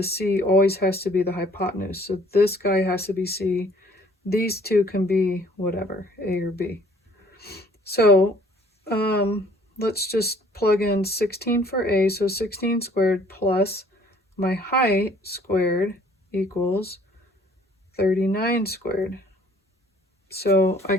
c always has to be the hypotenuse. So this guy has to be c. These 2 can be whatever, a or b. So let's just plug in 16 for a. So 16 squared plus my height squared equals 39 squared. So I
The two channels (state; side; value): normal; both; correlation 0.57